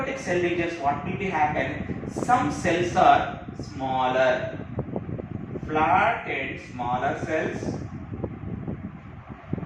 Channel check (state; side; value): identical; both; correlation 1.00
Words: cell divisions, what will be happen? Some cells are smaller, flat and smaller cells.